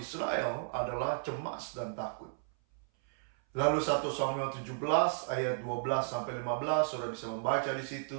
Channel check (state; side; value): silent; left; 55 dB below the other